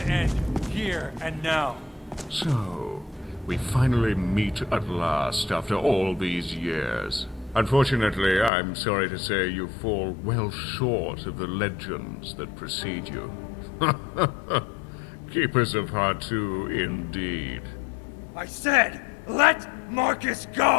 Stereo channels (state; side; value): drops out; right; at 8.5 s